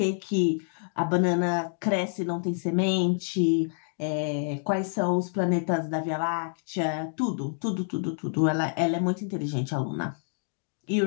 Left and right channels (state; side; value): silent; right; digital silence